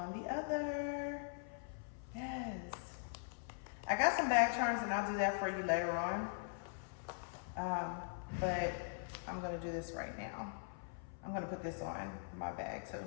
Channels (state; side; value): silent; right; 50 dB below the other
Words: the other. Yes. I got some bag charms and I'll do that for you later on. But I'm gonna do this right now. I'm gonna put this on my bag too.